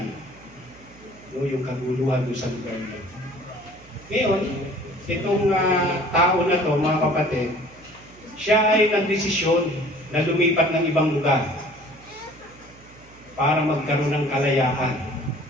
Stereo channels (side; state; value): right; noise; hum, 23 dB below the sound